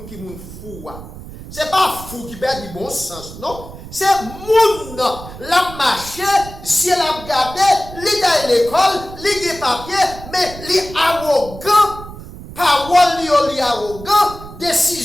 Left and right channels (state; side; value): noise; right; rumble, 14 dB below the sound